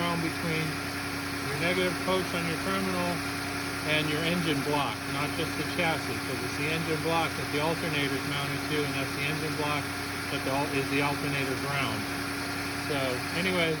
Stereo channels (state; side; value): identical; both; correlation 1.00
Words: between your negative post on your terminal and your engine block, not just the chassis, because it's the engine block that the alternator is mounted to, and that's the engine block that is the alternator ground. So anyways,